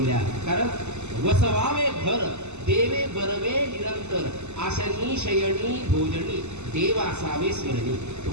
कारण वसवावे घर देवे बरवे निरंतर आशनी शयनी भोजनी देव असावे स्मरणी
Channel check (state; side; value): late; left; 0.82 ms